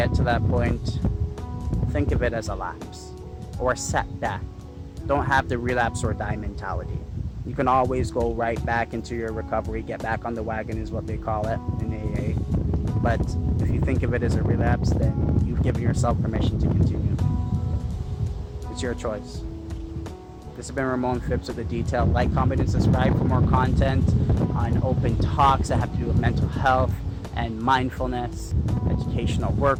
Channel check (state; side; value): identical; both; correlation 1.00